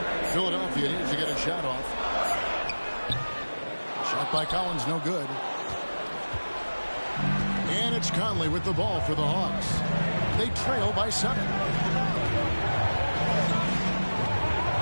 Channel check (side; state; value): both; inverted; correlation -1.00